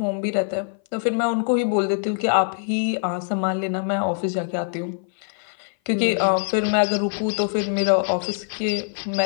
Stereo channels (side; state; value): right; silent; 57 dB below the other